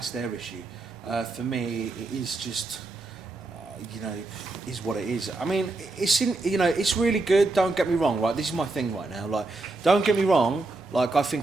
their issue. For me, it is just, you know, is what it is. I mean, it's really good. Don't get me wrong, right? This is my thing right now. Like, don't get me wrong. Like, I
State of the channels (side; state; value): left; quieter; 3.2 dB